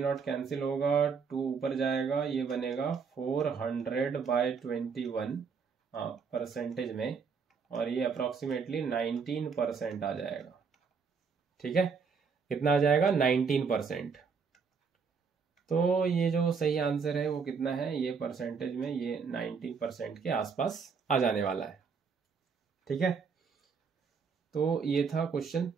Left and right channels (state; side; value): quieter; left; 5.6 dB